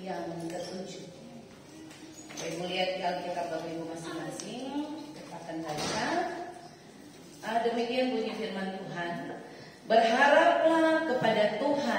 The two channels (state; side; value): identical; both; correlation 1.00